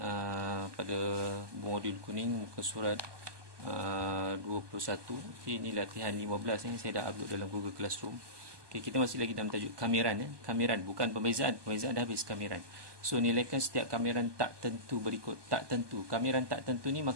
pada modul kuning muka surat 21. Okay, ini latihan 15 yang saya dah upload dalam Google Classroom. Okay, kita masih lagi dalam tajuk kameran. Kameran, bukan pembezaan. Pembezaan dah habis kameran. So, nilaikan setiap kameran tak tentu berikut. Tak tentu. Kameran tak tentu ni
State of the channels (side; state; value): left; late; 1.2 ms